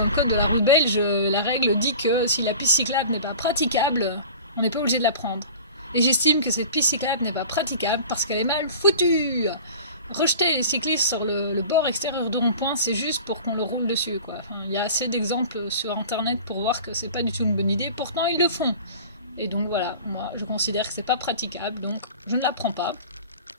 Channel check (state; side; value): inverted; both; correlation -0.39